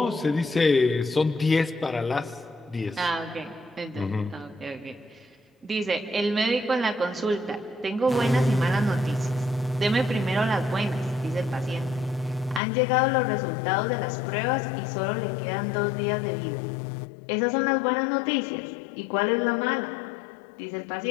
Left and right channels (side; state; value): right; drops out; at 12.6 s